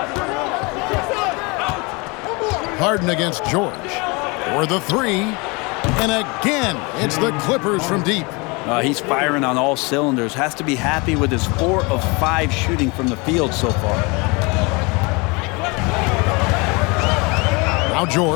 Harden against George. For the three. And again, it's the Clippers from deep. He's firing on all cylinders. Has to be happy with his 4 of 5 shooting from the field so far. Now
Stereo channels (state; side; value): quieter; right; 27.9 dB